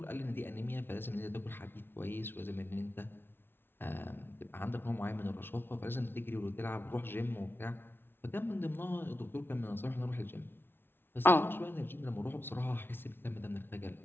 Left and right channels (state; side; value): late; right; 0.11 ms